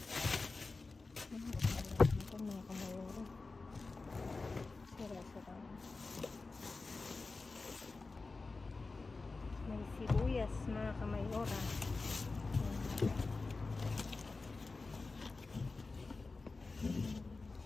Ito mga kamayora. Sira-sira. May sibuyas mga kamayora.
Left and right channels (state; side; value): quieter; right; 3.8 dB